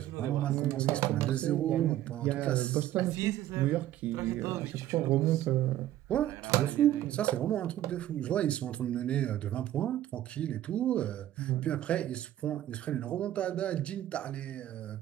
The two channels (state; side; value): quieter; left; 13.1 dB